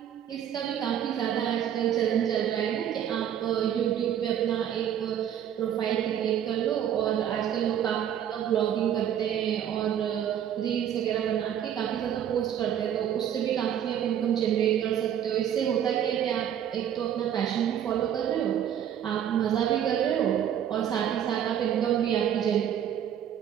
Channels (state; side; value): quieter; left; 9.7 dB